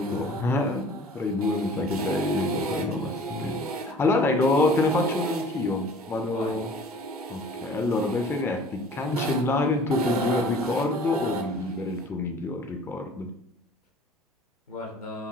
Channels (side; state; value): both; normal; correlation 0.48